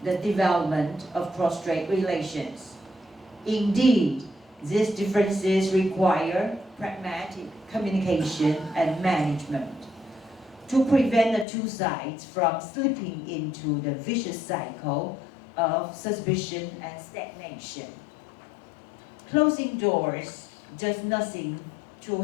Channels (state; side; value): drops out; right; at 11.5 s